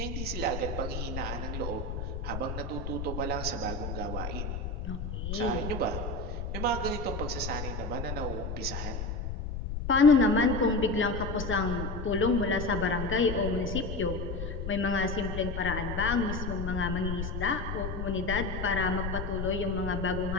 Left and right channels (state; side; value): noise; left; rumble, 4 dB below the sound